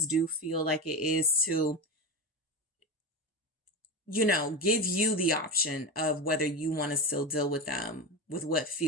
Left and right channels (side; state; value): both; normal; correlation 0.20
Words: do feel like it is to, give you the option of whether you want to still deal with them with what